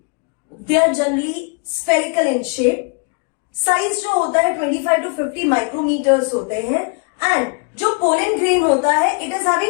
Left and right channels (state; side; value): quieter; right; 35.8 dB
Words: are generally spherical in shape, size जो होता है 25 to 50 माइक्रोमीटर्स होते हैं। एंड जो पोलन ग्रेन होता है it is